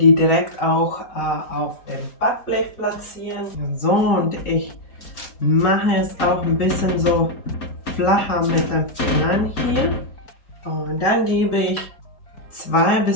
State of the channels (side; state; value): right; late; 3.8 ms